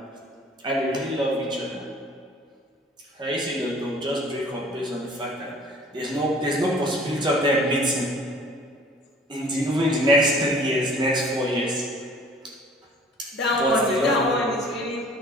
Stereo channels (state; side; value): normal; both; correlation 0.51